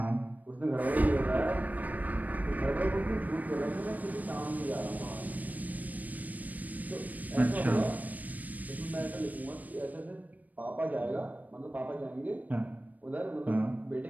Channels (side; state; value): left; late; 0.078 ms